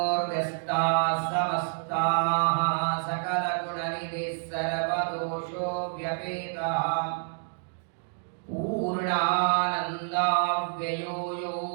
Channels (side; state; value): left; silent; digital silence